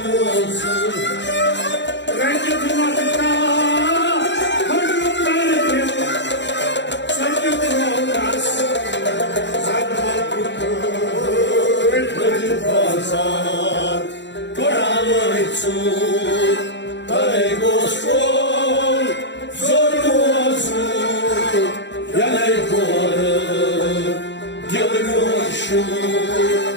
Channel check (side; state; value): right; late; 0.52 ms